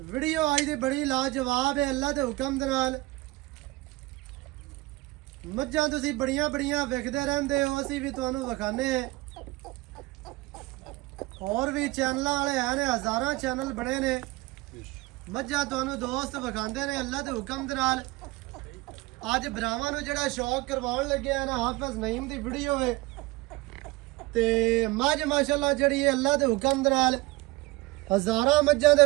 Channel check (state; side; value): quieter; left; 21.2 dB